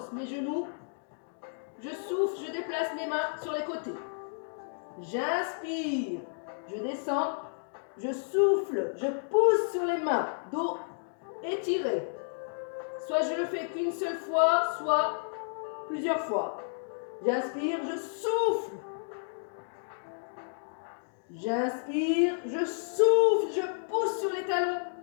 mes genoux. Je souffle, je déplace mes mains sur les côtés. J'inspire, je descends. Je souffle, je pousse sur les mains. Dos étiré. Soit je le fais qu'une seule fois, soit plusieurs fois. J'inspire, je souffle. J'inspire, je souffle, je pousse sur les talons.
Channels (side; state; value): right; silent; digital silence